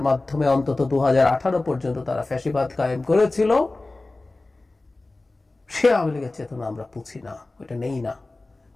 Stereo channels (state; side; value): quieter; right; 3.1 dB